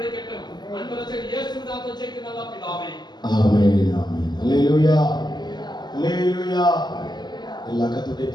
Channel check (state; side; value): late; right; 0.21 ms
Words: அன்பரசே இயேசுவின் நாமத்தில் ஜெபிக்கிறேன் நல்ல பிதாவே. ஆமென் ஆமென். ஹல்லேலூயா ஹல்லேலூயா. எல்லா கர்த்தருடைய